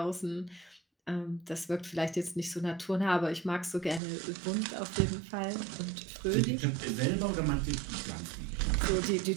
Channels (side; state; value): left; drops out; at 4.0 s